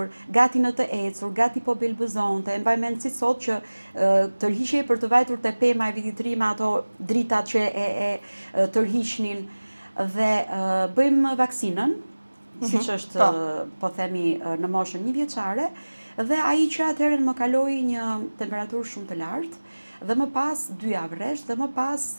gati në të ecur, gati po belbëzonte. Mbaj mend si sot që tërhiqej për të vajtur te pema e vitit të ri me ato dritat që e tërhiqnin, dhe bëjmë vaksinën, siç është po themi në moshën 1 vjeçare, dhe ai që atëherë më kaloi një temperaturë shumë të lartë, dhe më pas 2 javë rresht, dhe më pas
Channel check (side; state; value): both; inverted; correlation -1.00